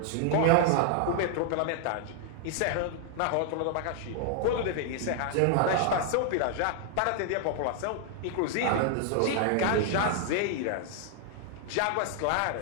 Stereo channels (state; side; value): different; both; correlation 0.00